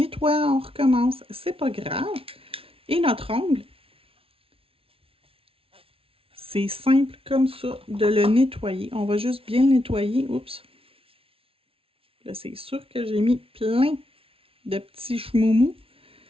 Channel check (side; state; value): left; late; 0.26 ms